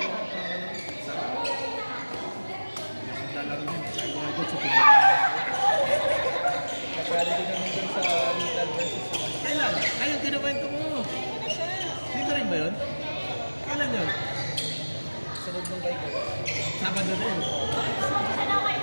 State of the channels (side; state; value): both; inverted; correlation -1.00